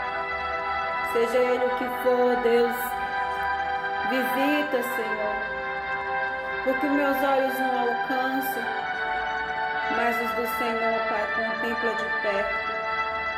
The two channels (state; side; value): identical; both; correlation 1.00